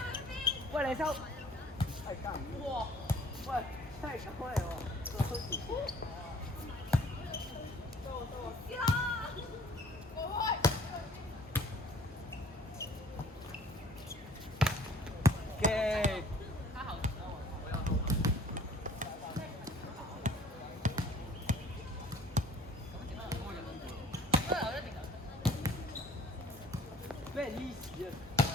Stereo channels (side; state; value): both; normal; correlation 0.54